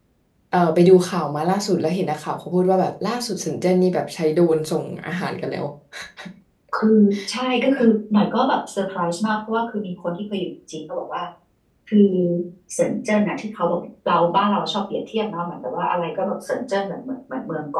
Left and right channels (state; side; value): identical; both; correlation 1.00